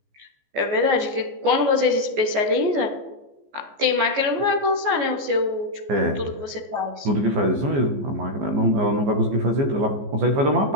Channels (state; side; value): late; left; 14 ms